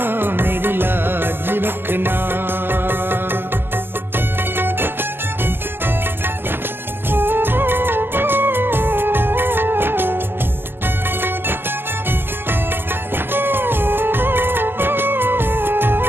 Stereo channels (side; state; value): left; late; 0.10 ms